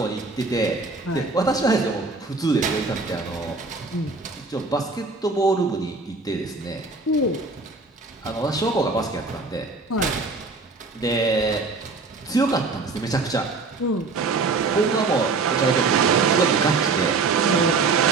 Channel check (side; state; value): left; quieter; 3.9 dB